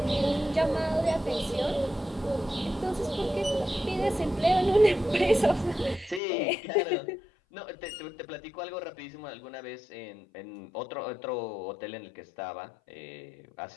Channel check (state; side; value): drops out; right; at 6.2 s